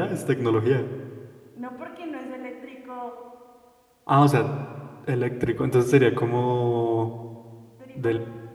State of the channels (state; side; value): identical; both; correlation 1.00